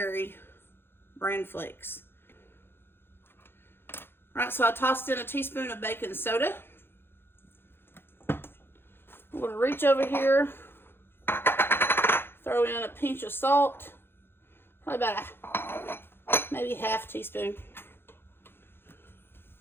bran flakes. All right, so I tossed in a teaspoon of baking soda. I'm going to reach over here, throw in a pinch of salt, probably about maybe half teaspoon.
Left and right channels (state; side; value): late; right; 0.11 ms